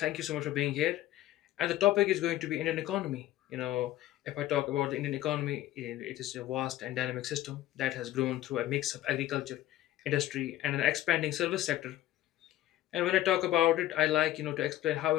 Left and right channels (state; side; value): quieter; right; 14.3 dB